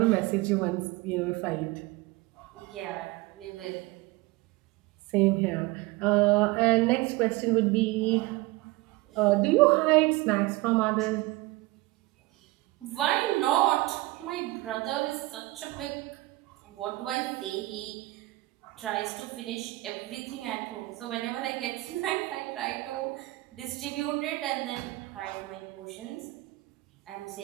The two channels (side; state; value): left; quieter; 20.5 dB